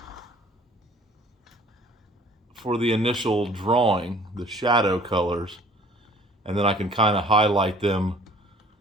for the initial drawing, the shadow colors, and then I can kind of highlight them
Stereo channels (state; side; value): normal; both; correlation 0.53